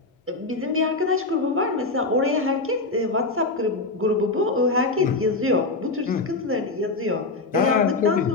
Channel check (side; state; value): right; quieter; 3.4 dB